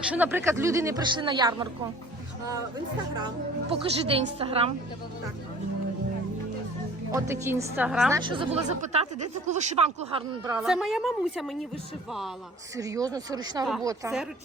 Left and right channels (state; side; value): normal; both; correlation 0.48